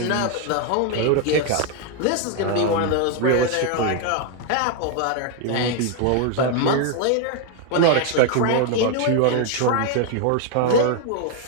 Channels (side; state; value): both; different; correlation 0.01